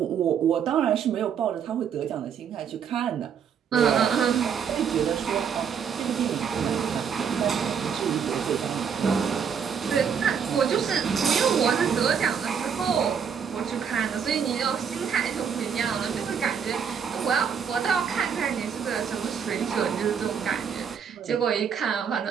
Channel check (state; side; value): quieter; left; 7.2 dB